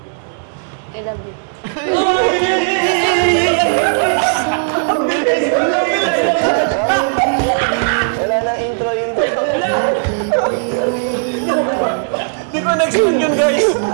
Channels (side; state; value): left; silent; digital silence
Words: Ilan din. Wala nang intro. Di ko na-expect yun guys.